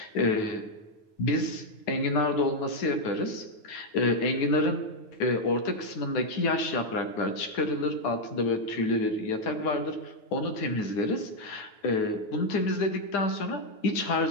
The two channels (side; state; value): right; late; 9.3 ms